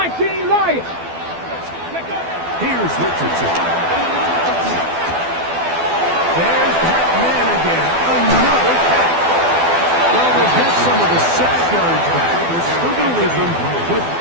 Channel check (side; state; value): left; late; 12 ms